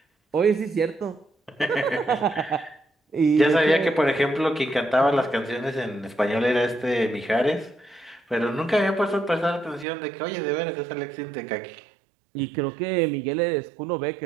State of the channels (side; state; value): left; drops out; at 9.9 s